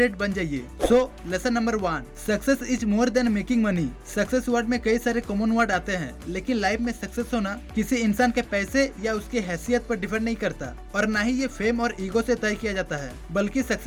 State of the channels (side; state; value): both; identical; correlation 1.00